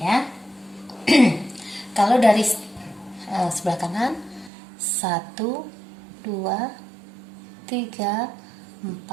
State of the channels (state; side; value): drops out; left; at 4.5 s